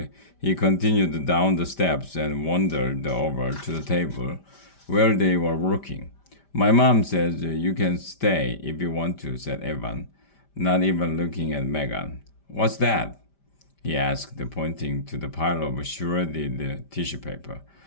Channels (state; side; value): late; right; 5.1 ms